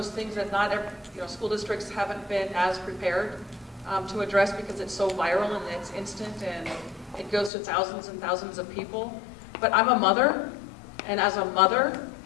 things that not every, school districts haven't been as prepared to address because it's so viral and it's instant and it goes to thousands and thousands of people. But I'm a mother, and as a mother,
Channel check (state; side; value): drops out; right; at 7.5 s